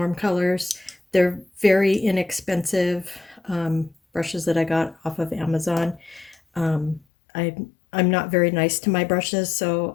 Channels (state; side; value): drops out; right; at 7.0 s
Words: colors. They're very inexpensive brushes that I got off of Amazon. I I'm not very nice to my brushes, so